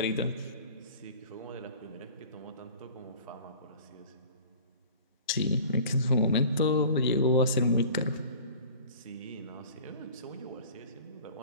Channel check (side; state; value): both; inverted; correlation -0.44